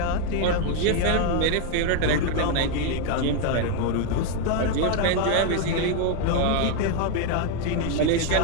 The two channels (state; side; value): different; both; correlation 0.01